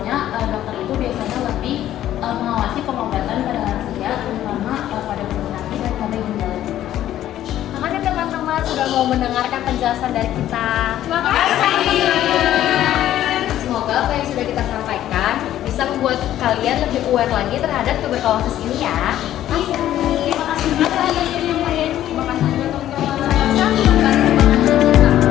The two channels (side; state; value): right; quieter; 12.5 dB